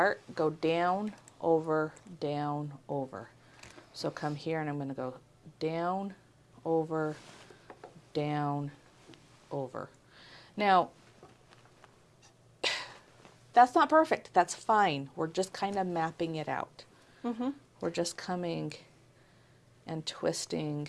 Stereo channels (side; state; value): both; identical; correlation 1.00